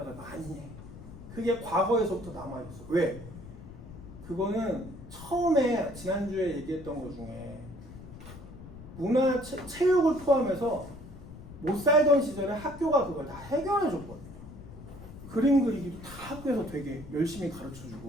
많이 해. 그게 과거에서부터 남아있어. 왜? 그거는 처음에 지난주에 얘기했던 것 중에 문화, 체육을 포함해서 못 살던 시절에 학교가 그걸 다 해결해줬거든요. 그림 그리기도 다 학교에서 되게 열심히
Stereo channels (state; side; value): noise; left; rumble, 15 dB below the sound